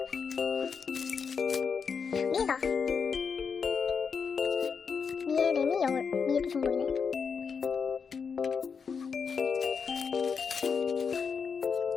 미에다. 미에, 레미, 영울. 미에도 중복이네.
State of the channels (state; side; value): quieter; right; 5.9 dB